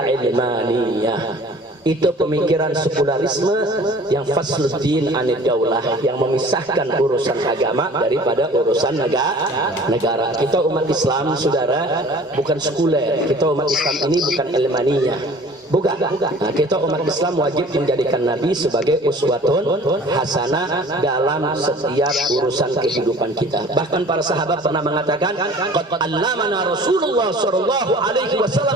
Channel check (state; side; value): normal; both; correlation 0.47